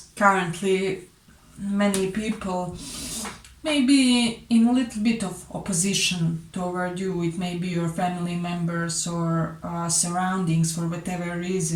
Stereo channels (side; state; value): both; identical; correlation 1.00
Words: currently many people maybe in a little bit of opposition toward you. It may be your family members or surroundings. For whatever